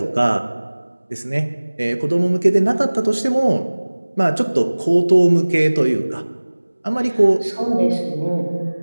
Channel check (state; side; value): inverted; both; correlation -1.00